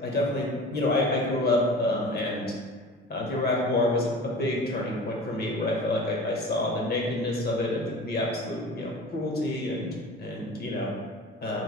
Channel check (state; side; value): normal; both; correlation 0.38